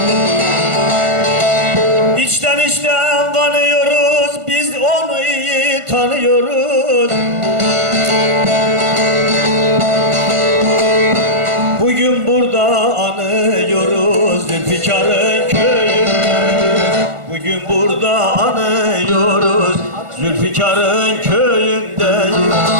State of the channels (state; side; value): late; left; 1.4 ms